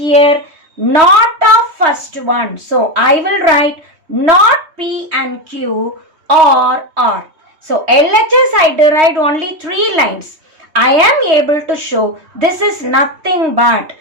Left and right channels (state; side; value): late; left; 3.2 ms